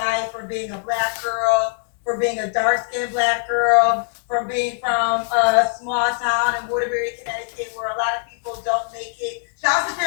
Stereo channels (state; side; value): silent; right; digital silence